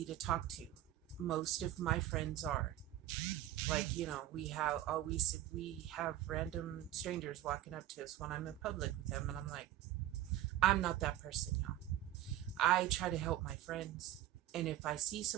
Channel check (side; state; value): left; quieter; 13.6 dB